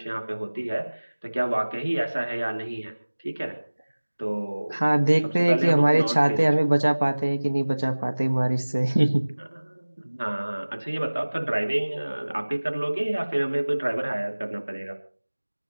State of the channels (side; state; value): both; inverted; correlation -1.00